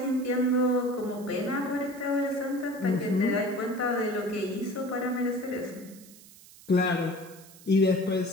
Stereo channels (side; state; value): right; noise; hiss, 21 dB below the sound